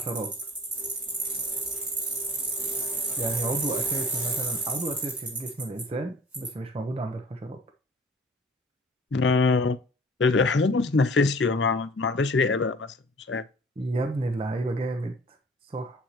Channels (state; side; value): normal; both; correlation 0.48